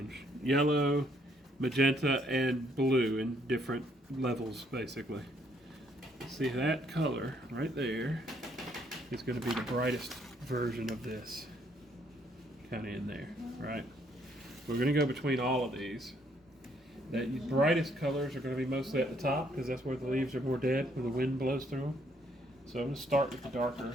Yellow, magenta, and blue in different levels, basically. See, that color right there is going to be the brightest version of this. Kind of in there, right? We're going to go between all of these. The brightest colors are going to be mostly at the top because that's where the leaves are more dead, where the wind blows through them. So I'm going to start with the darker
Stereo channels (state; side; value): normal; both; correlation 0.69